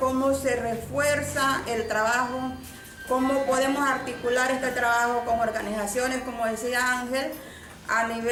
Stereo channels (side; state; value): both; identical; correlation 1.00